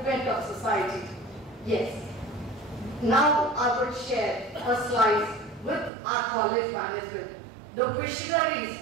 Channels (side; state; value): left; drops out; at 5.9 s